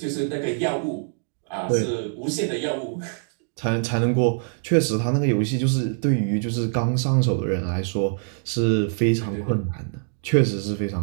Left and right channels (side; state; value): left; silent; digital silence